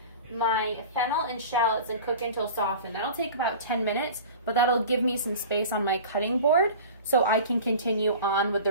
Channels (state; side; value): inverted; both; correlation -0.38